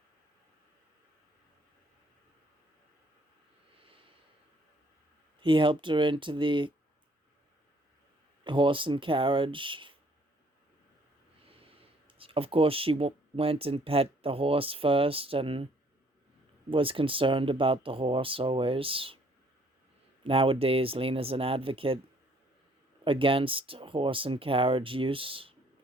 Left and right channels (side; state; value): both; normal; correlation 0.62